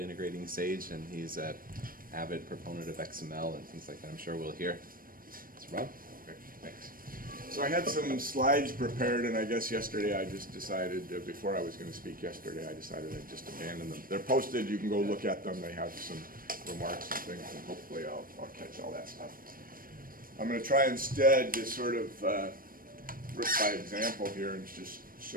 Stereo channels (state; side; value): late; left; 0.41 ms